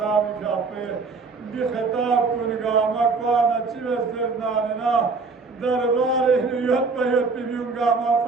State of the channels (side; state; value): left; quieter; 4.3 dB